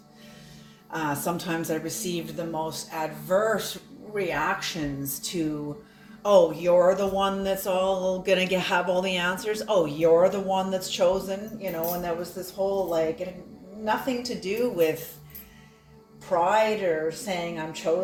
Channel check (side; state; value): both; identical; correlation 1.00